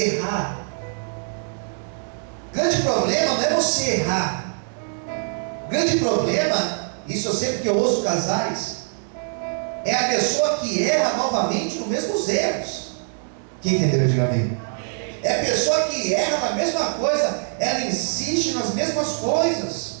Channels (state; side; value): silent; left; 63 dB below the other